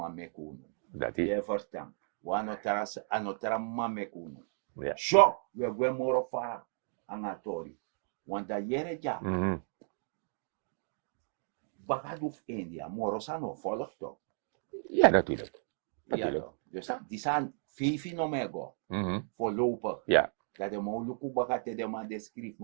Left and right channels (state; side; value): silent; left; digital silence